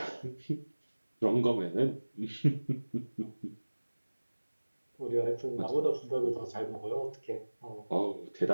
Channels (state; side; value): inverted; both; correlation -1.00